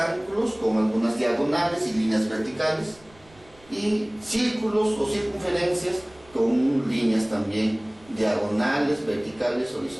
con algunas diagonales y líneas verticales, y círculos o circunferencias con líneas también diagonales, verticales,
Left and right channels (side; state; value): right; noise; rumble, 27 dB below the sound